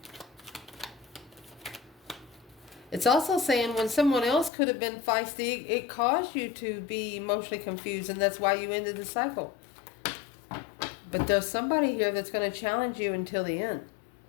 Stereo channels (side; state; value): right; drops out; at 4.5 s